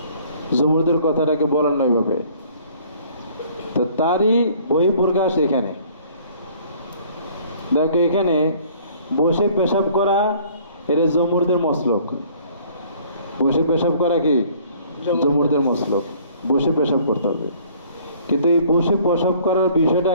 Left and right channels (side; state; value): both; inverted; correlation -0.56